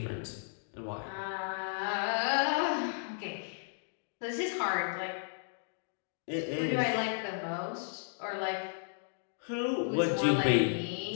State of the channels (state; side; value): silent; right; digital silence